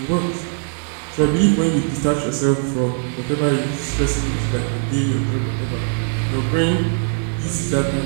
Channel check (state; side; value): silent; left; 58 dB below the other